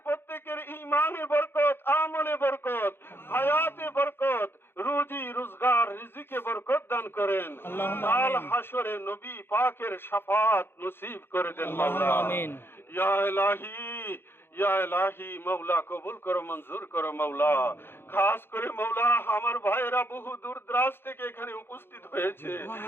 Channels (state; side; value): late; right; 0.11 ms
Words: প্রত্যেকের ঈমানে বরকত, আমলে বরকত, হায়াতে বরকত, রুজি রোজগার রিজিকে বরকত দান করেন। আল্লাহুম্মা কাল আমিন। হাসরে নবী পাকের শাফাত নসিব করে দেন মাওলা। আল্লাহুম্মা আমিন। ইয়া ইলাহি, ইয়া ইলাহি মাওলা কবুল করো, মঞ্জুর করো মাওলা। খাস করে মাওলা আমার ভাইয়েরা বহু দূর দরাজ থেকে এখানে উপস্থিত হয়েছে,